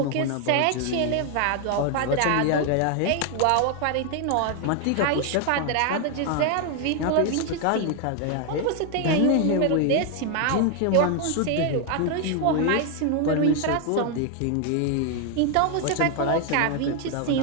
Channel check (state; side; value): different; both; correlation 0.00